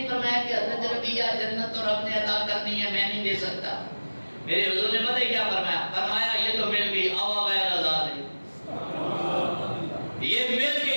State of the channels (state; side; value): inverted; both; correlation -1.00